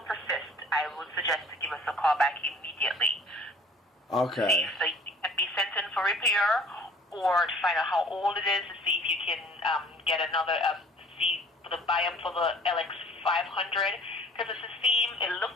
persists, I would suggest to give us a call back immediately. Okay. So can be sent in for repair, or to find out how old it is to see if you can get another see the buy up for the LX 500, because it's the same. It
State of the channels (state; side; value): normal; both; correlation 0.51